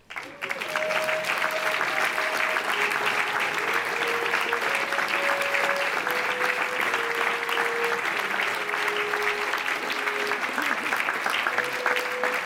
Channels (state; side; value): identical; both; correlation 1.00